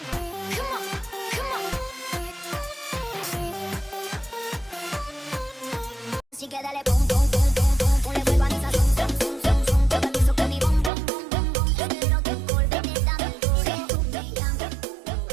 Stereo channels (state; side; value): drops out; left; at 10.9 s